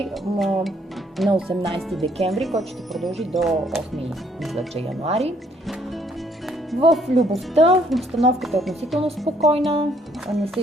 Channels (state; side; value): normal; both; correlation 0.66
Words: на 18 декември, който ще продължи до 8 януари. В любовта обстановката е относително спокойна, не са